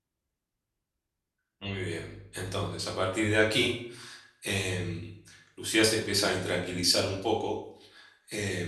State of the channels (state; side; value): identical; both; correlation 1.00